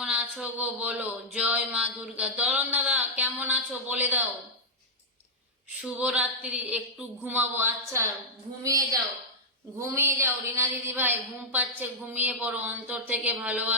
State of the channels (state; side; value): normal; both; correlation -0.08